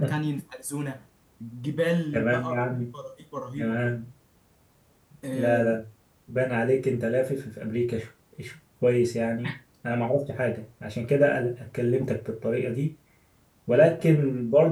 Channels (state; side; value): identical; both; correlation 1.00